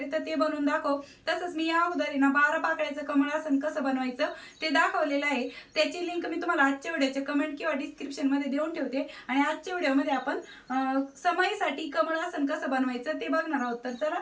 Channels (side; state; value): both; identical; correlation 1.00